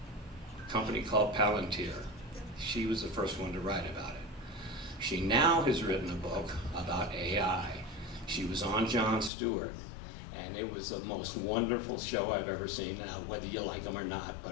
A company called Palantir. She was the first one to write about it. She now has written a book about AI. She was on Jon Stewart, and it was the most wonderful show I've ever seen, now whether you like them or not,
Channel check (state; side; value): drops out; right; at 9.3 s